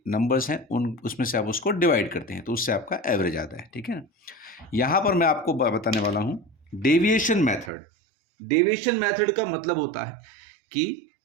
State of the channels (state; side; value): drops out; left; at 7.7 s